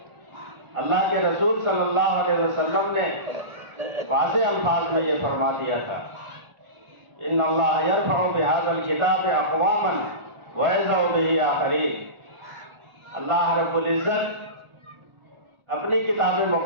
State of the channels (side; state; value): left; late; 1.4 ms